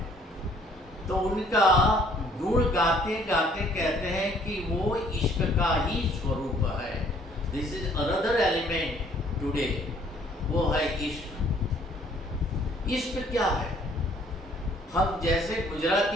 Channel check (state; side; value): normal; both; correlation 0.60